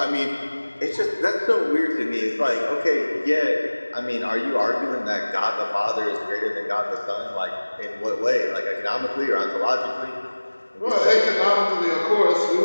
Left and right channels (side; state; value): both; inverted; correlation -1.00